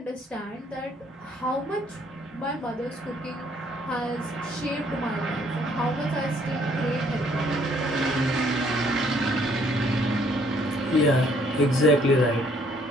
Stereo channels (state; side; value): normal; both; correlation 0.64